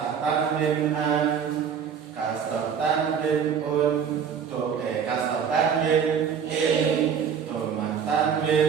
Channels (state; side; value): quieter; left; 7.3 dB